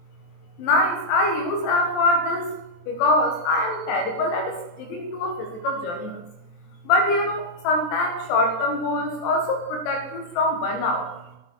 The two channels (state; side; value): late; right; 23 ms